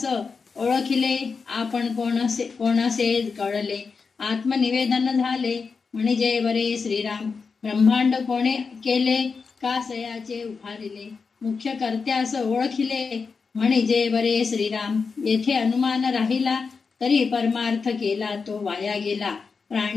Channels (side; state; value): right; quieter; 5.0 dB